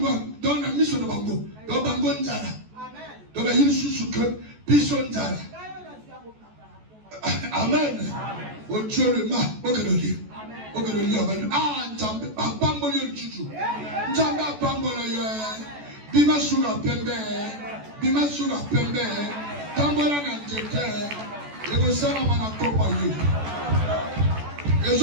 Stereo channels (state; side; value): late; left; 14 ms